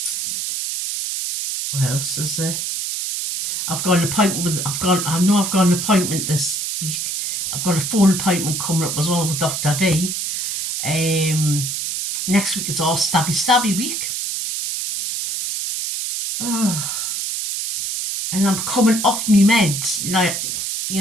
What else is there? I've got an appointment with. I know I've got an appointment this week. I've got a phone appointment coming up as well with Dr. V. Next week it's all stabby week. Oh. And I'm coming off me meds.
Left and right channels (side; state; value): right; noise; hiss, 2 dB below the sound